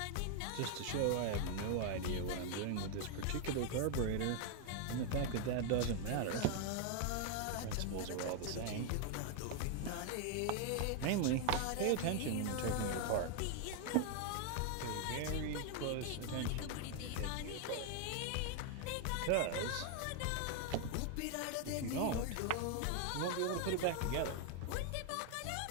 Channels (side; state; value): both; different; correlation 0.00